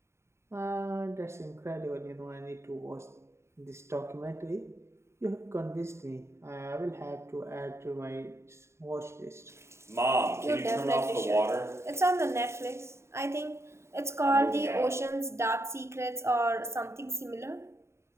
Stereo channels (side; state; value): left; late; 0.13 ms